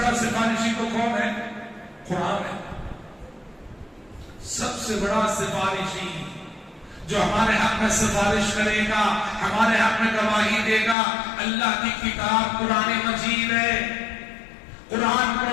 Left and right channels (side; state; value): right; drops out; at 11.0 s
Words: سفارشی تو کون ہے؟ قرآن ہے. سب سے بڑا سفارشی جو ہمارے حق میں سفارش کرے گا، ہمارے حق میں گواہی دے گا، اللہ کی کتاب قرآن مجید ہے. قرآن